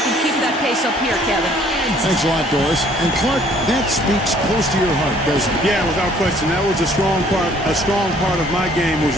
can keep that pace up here, Kevin. Thanks a lot, Doris. And Clark, that speaks close to your heart, doesn't it? Yeah, without question. That was a strong part of my game was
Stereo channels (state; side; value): normal; both; correlation 0.59